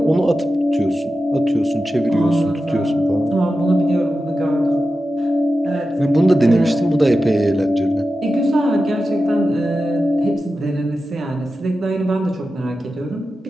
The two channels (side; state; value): both; normal; correlation 0.92